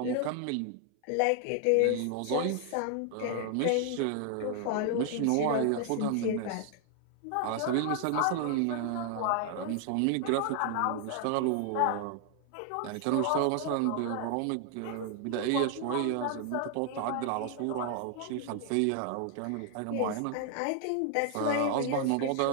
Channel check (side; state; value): both; different; correlation 0.00